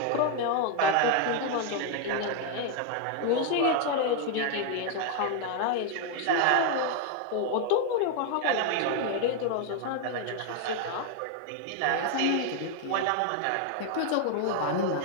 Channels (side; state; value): both; different; correlation 0.00